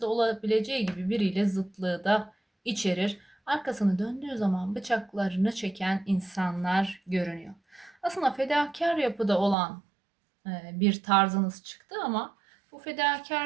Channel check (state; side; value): drops out; left; at 9.6 s